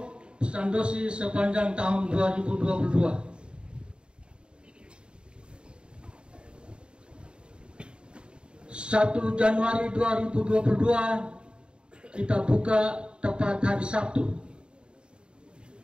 Sandosi sepanjang tahun 2022. 1 Januari 2022 kita buka tepat hari Sabtu.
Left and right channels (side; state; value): left; late; 0.052 ms